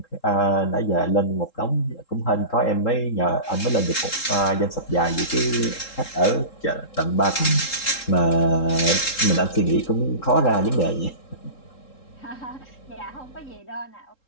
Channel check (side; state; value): right; late; 3.8 ms